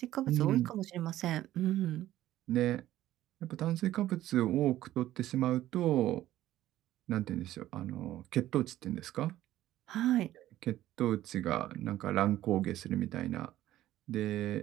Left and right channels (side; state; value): left; quieter; 14.0 dB